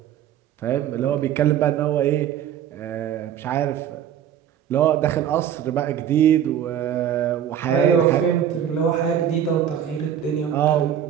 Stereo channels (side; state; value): left; quieter; 9.7 dB